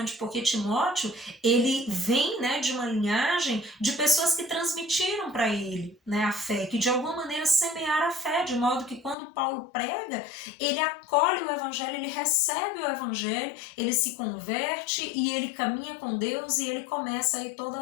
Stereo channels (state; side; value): drops out; right; at 9.2 s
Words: porque Timóteo, ele vem, né, de uma linhagem de pessoas que transmitiram para ele, né, a fé, que de alguma maneira semearam a fé, de modo que quando Paulo prega, ele acolhe o evangelho, ele recebe o evangelho, ele se converte e ele caminha com Deus e ele começa aí toda